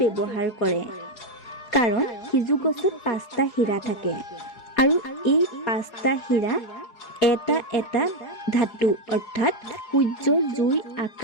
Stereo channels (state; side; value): late; right; 4.7 ms